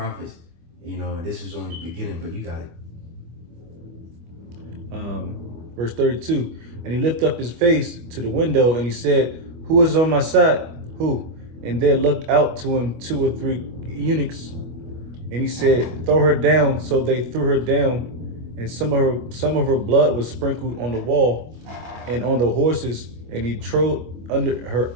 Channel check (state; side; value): late; left; 25 ms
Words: You know, and this was only the beginning, but you got it. Verse 32. And he lifted up his face to the window and he said, who is on my side? Who? And there looked out to him 2 or 3 eunuchs. And he said, throw her down. So they threw her down, and some of her blood was sprinkled on the wall and on the horses, and he trod